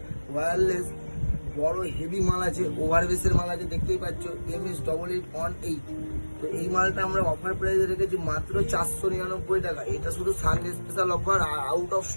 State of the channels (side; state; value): both; inverted; correlation -1.00